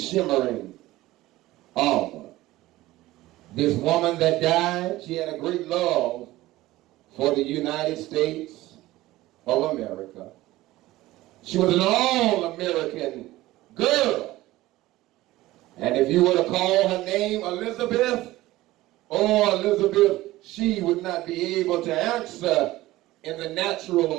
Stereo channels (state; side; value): quieter; left; 17.2 dB